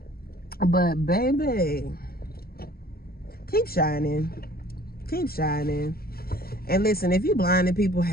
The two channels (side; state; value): right; late; 0.44 ms